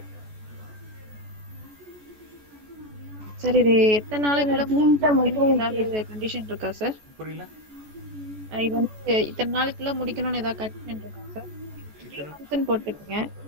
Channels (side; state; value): left; late; 14 ms